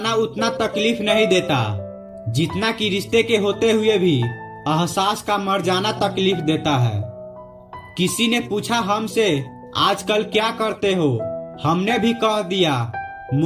उतना तकलीफ नहीं देता जितना कि रिश्ते के होते हुए भी एहसास का मर जाना तकलीफ देता है। किसी ने पूछा हमसे आजकल क्या करते हो, हमने भी कह दिया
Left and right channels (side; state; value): both; identical; correlation 1.00